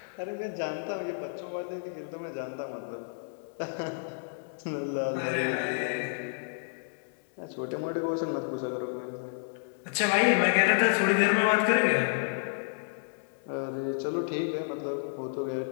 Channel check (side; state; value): right; silent; digital silence